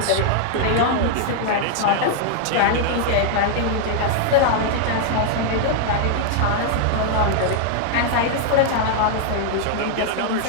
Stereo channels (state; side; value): different; both; correlation 0.00